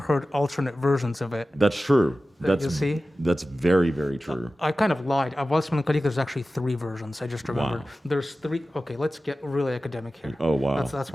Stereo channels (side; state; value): both; normal; correlation 0.95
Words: alternate versions of it. That's true. You see? That's very, very true. I kind of lied. Of Valse Mélancolique, there's actually 3 versions. I just remembered. Wow. There's 3. Okay, let's get really academic here. Oh, wow. That's